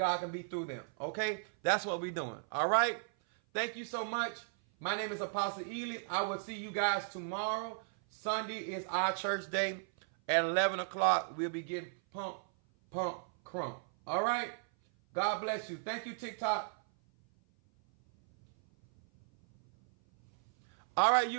can be through them. Okay? That's what we're doing. All right? Thank you so much. My name is Apostle Ely. I will see you guys tomorrow. Sunday is our church day. At 11 o'clock, we'll be getting pump, crump. All right? God bless you. Thank you, TikTok. All right,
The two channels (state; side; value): silent; left; 54 dB below the other